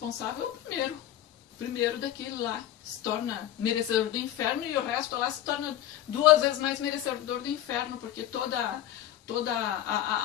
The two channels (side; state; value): right; quieter; 12.1 dB